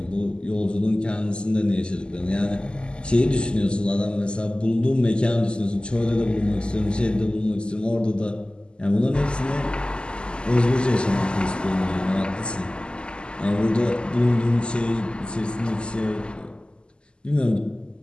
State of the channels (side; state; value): right; late; 0.050 ms